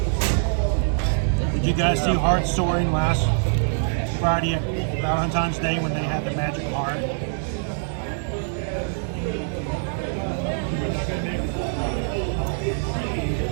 Did Did you guys see Heart Soaring last Friday at Valentine's Day when they had the magic heart?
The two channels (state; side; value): silent; left; digital silence